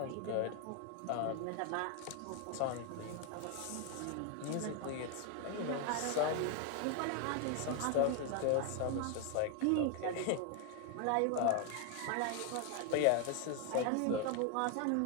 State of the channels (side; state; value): both; different; correlation 0.00